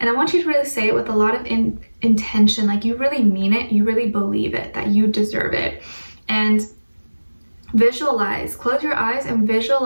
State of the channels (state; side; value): inverted; both; correlation -1.00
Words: I want you to really say it with a lot of intention, like you really mean it, you really believe it, that you deserve it. And visualize, close your eyes and